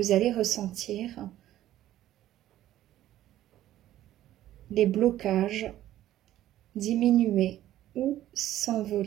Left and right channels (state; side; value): quieter; left; 13.4 dB